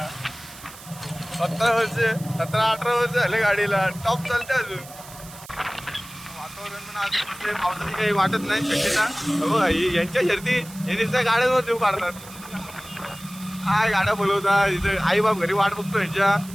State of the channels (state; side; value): noise; right; hiss, 18 dB below the sound